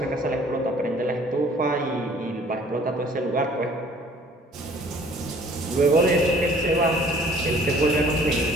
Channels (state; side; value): normal; both; correlation 0.55